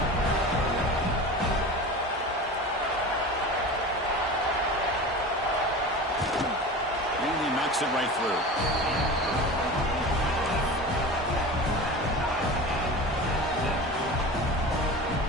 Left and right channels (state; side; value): normal; both; correlation 0.32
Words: And he knocks it right through.